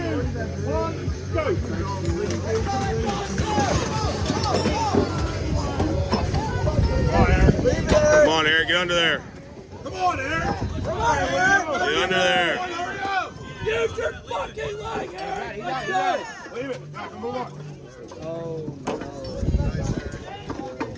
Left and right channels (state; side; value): identical; both; correlation 1.00